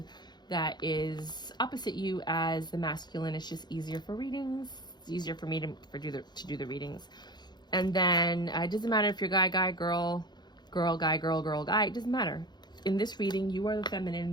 that is opposite you as the masculine. It's just easier for readings. It's easier for me to do the readings. And then it doesn't matter if you're guy, girl, guy, girl, guy. It doesn't matter. In this reading, you are the feminine,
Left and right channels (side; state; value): right; late; 0.21 ms